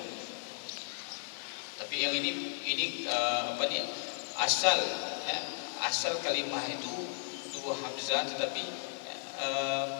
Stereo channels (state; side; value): silent; right; digital silence